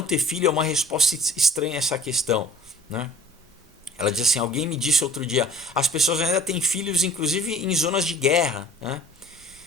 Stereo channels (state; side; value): normal; both; correlation 0.49